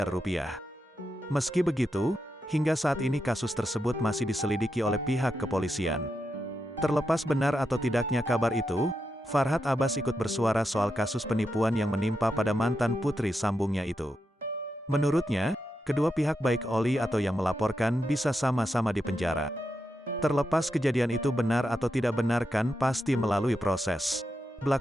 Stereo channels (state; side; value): normal; both; correlation 0.86